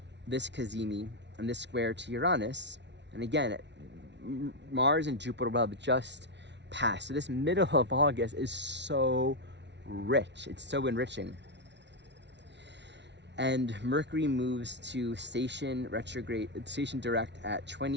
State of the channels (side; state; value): left; late; 0.51 ms